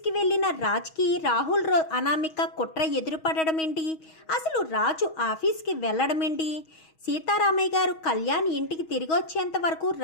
వెళ్లిన రాజ్కి రాహుల్ అనామిక కుట్ర ఎదురుపడడం ఏంటి? అసలు రాజు ఆఫీస్కి వెళ్ళడం ఏంటి? సీతారామయ్య గారు కళ్యాణ్ ఇంటికి తిరిగి వచ్చేంత వరకు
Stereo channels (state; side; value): late; right; 6.3 ms